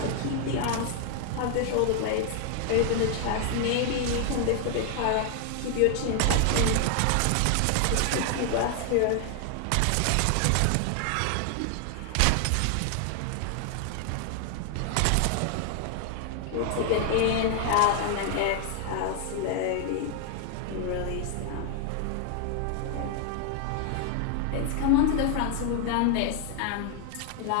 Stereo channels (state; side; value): different; both; correlation 0.00